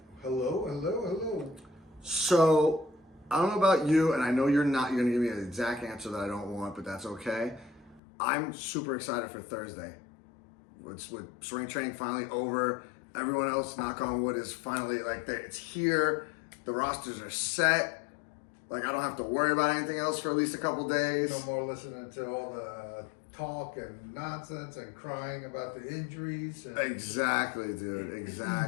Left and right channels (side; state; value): right; drops out; at 8.0 s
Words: Hello. So, I don't know about you, and I know you're going to give me an exact answer that I don't want, but that's okay. I'm super excited for Thursday. With spring training finally over, everyone else, knock on wood, is finally, it's here. The rosters are set. I don't have to worry about anything else for at least a couple days. No more listening to all the talk and nonsense and crying about the injuries. Exactly, dude.